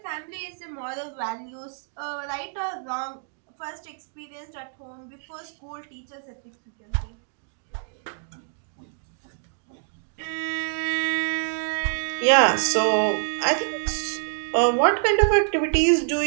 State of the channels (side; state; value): left; silent; digital silence